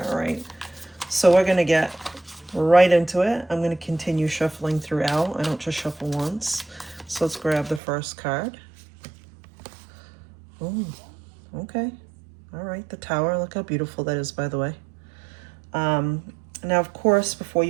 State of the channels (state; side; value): drops out; left; at 7.8 s